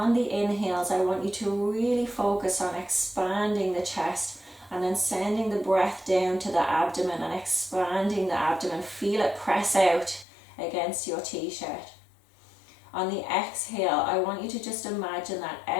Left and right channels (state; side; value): drops out; right; at 10.2 s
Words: the inhales, I want you to really focus on expanding the chest and then sending the breath down to the abdomen and expanding the abdomen. Feel it press out against your t-shirt. On the exhale, I want you to just imagine that